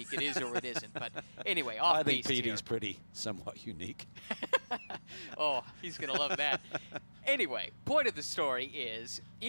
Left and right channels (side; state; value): both; inverted; correlation -1.00